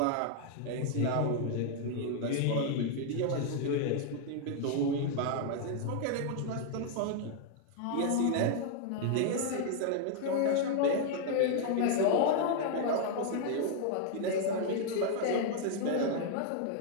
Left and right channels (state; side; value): different; both; correlation 0.00